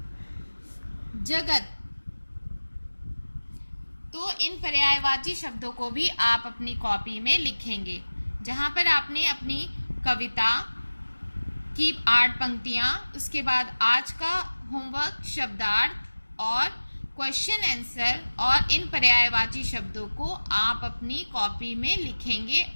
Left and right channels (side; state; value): both; inverted; correlation -1.00